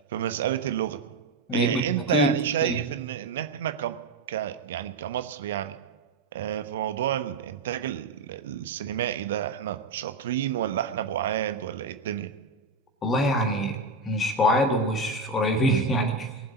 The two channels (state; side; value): quieter; left; 3.2 dB